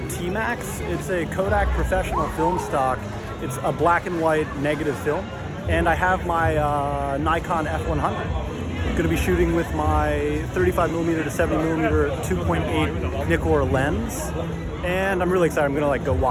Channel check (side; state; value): both; identical; correlation 1.00